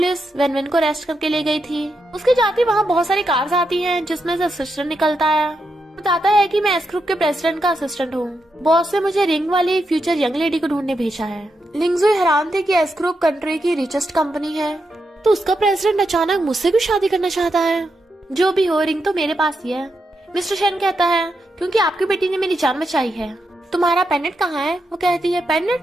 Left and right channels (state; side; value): normal; both; correlation 0.84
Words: वैन को अरेस्ट करके ले गई थी। उसके जाते वहाँ बहुत सारी कार्स आती हैं जिसमें से असिस्टेंट निकलता है, बताता है कि मैं एस ग्रुप के प्रेसिडेंट का असिस्टेंट हूँ, बॉस ने मुझे रिंग वाली फ्यूचर यंग लेडी को ढूंढने भेजा है। लिंगजुई हैरान थे कि एस ग्रुप कंट्री की रिचेस्ट कंपनी है, तो उसका प्रेसिडेंट अचानक मुझसे भी शादी करना चाहता है। जो भी हो, रिंग तो मेरे पास ही है। मिस्टर शेन कहता है क्योंकि आपकी बेटी ने मेरी जान बचाई है। तुम्हारा पेंडेंट कहाँ है? वो कहती है